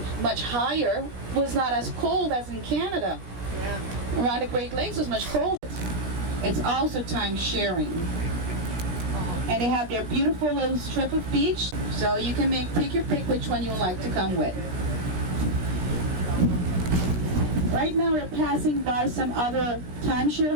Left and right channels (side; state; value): left; late; 17 ms